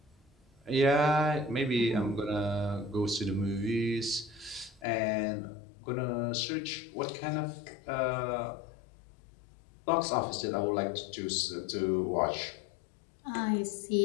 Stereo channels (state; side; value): drops out; right; at 4.9 s